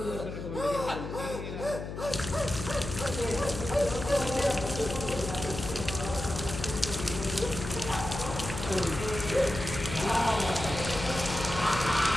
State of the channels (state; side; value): noise; left; hum, 7 dB below the sound